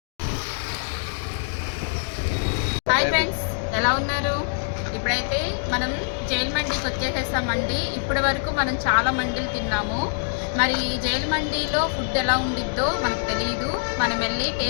హాయ్ ఫ్రెండ్స్, ఎలా ఉన్నారు? ఇప్పుడైతే మనం జైలు మండీకి వచ్చేసేస్తామండి. ఇప్పటి వరకు మనం చాలా మండీలు తిన్నాము. మరి జైలు మండీలో ఫుడ్ ఎలా ఉండిద్దో మనకు తెలియదు. మనం వెళ్ళి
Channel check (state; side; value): silent; right; digital silence